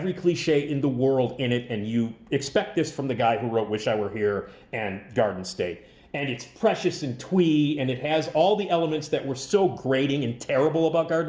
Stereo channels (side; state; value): both; identical; correlation 1.00